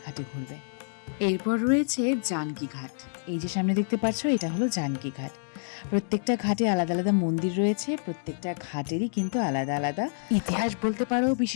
ঘাটে ঘুরবে। এরপর রয়েছে জানকী ঘাট। এই যে সামনে দেখতে পাচ্ছ, এটা হলো জানকী ঘাট। প্রত্যেকটা ঘাটে আলাদা আলাদা মন্দির রয়েছে, প্রত্যেকটা ঘাটেরই কিন্তু আলাদা আলাদা ইতিহাস বলতে পারো,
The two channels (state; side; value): silent; right; digital silence